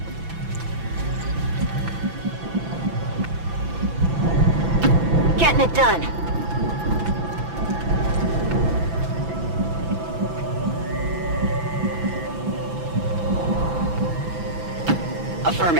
Getting it done.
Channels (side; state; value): left; late; 6.0 ms